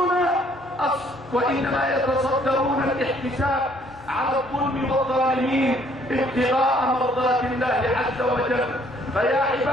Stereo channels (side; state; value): both; normal; correlation 0.63